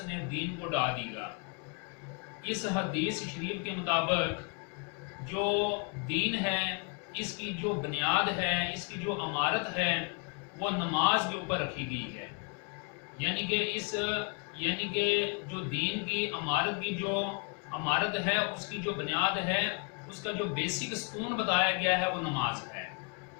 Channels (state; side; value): quieter; right; 35.0 dB